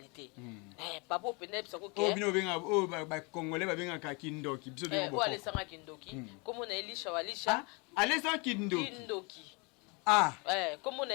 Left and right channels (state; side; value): quieter; right; 30.3 dB